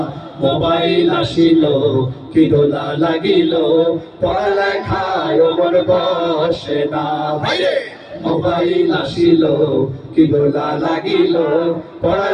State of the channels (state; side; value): identical; both; correlation 1.00